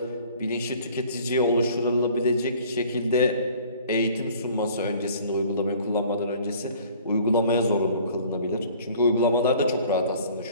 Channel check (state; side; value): inverted; both; correlation -0.51